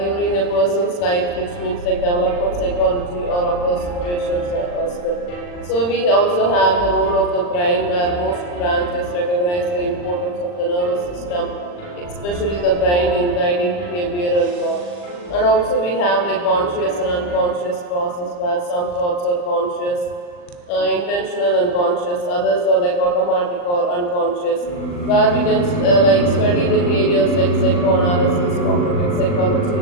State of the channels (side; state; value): right; late; 40 ms